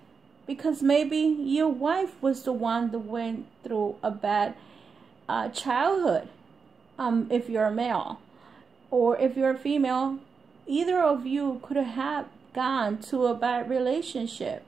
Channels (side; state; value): left; quieter; 5.5 dB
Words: because maybe your wife was the one that went through a bad childhood. If you're a male, or if you're a female, either of you could have gone to a bad relationship